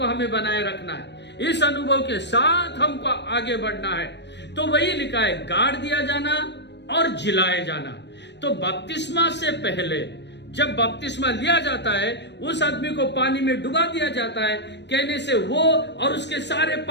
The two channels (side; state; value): right; late; 0.50 ms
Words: हमें बनाए रखना है, इस अनुभव के साथ हमको आगे बढ़ना है। तो वही लिखा है, गाड़ दिया जाना और जिलाए जाना। तो बपतिस्मा से पहले जब बपतिस्मा लिया जाता है, उस आदमी को पानी में डुबा दिया जाता है। कहने से वो और उसके सारे